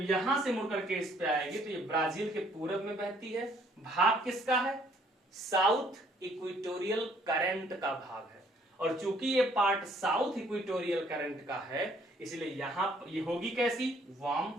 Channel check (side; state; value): both; normal; correlation 0.63